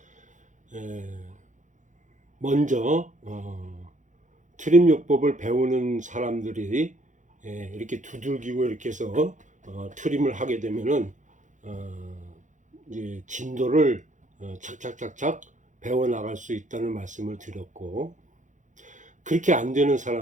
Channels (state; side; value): late; left; 0.36 ms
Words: 먼저 트림요법을 배우는 사람들이 이렇게 두들기고 이렇게 해서 트림을 하게 되면은 이제 진도를 착착착착 배워 나갈 수 있다는 말씀을 드렸고, 그렇게 안 되는